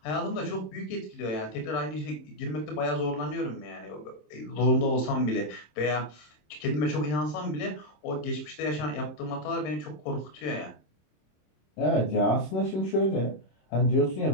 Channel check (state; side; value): late; right; 27 ms